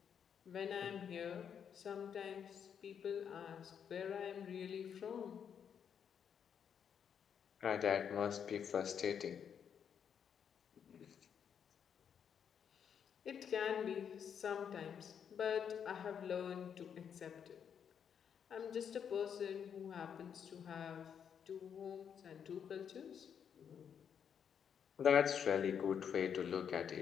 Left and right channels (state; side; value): quieter; right; 7.8 dB